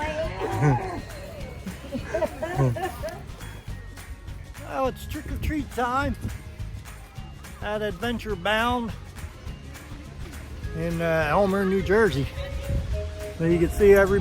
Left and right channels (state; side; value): identical; both; correlation 1.00